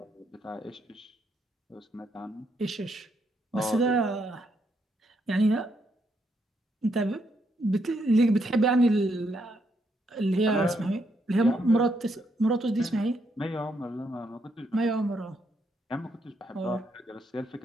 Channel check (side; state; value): both; normal; correlation 0.77